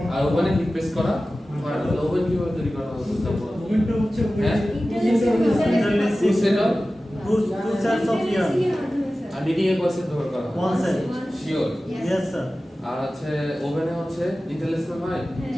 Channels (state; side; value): normal; both; correlation 0.95